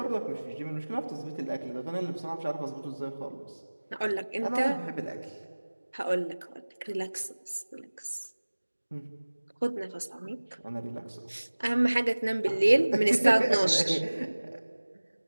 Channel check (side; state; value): both; inverted; correlation -1.00